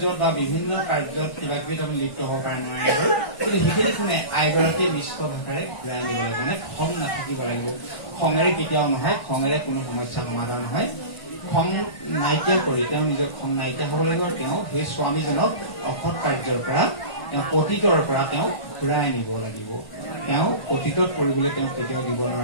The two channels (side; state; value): right; late; 1.5 ms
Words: বা বিভিন্ন কাৰ্যত কিবা কিবি আমি লিপ্ত হব পাৰে নোৱাৰে, কিন্তু সেইখিনি কোনে আইগৰাকীয়ে মিষ্ট ভাষাৰে ঘূৰাই আনিব লাগিব। মানে খং নাথাকিব লাগিব। খঙেৰে কেতিয়াও নহয়, খঙেৰে কোনো সমস্যা সমাধান নহয়। খং নাইকিয়া কৰি তেওঁ নিজৰ খং নাইকিয়া হ'ব লাগিব। তেওঁ সেই স্বামীজনক অসৎ কাৰ্যৰ পৰা, তেওঁ অতীতৰ পৰা তেওঁ ঘূৰাই আনিব লাগিব। তেওঁ অতীতত কৰিবলৈ তেওঁ কেতিয়াও